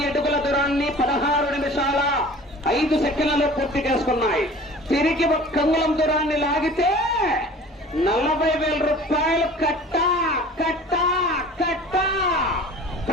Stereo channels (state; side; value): normal; both; correlation 0.44